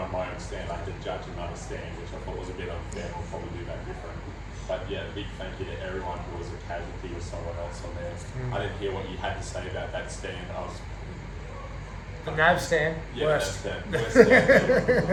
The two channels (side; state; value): both; identical; correlation 1.00